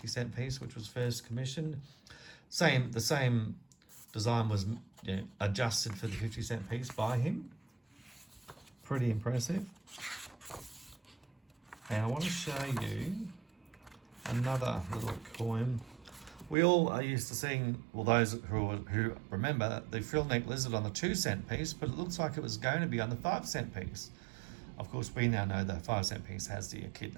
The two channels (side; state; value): left; drops out; at 16.6 s